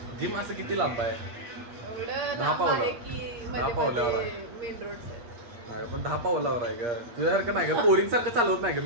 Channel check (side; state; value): left; late; 8.5 ms